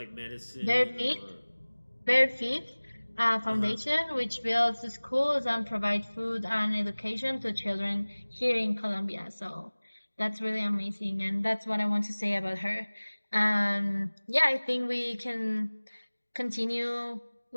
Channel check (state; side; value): inverted; both; correlation -1.00